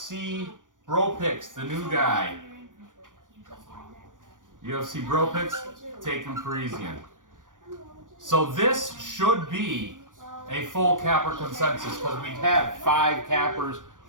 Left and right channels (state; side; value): late; left; 0.88 ms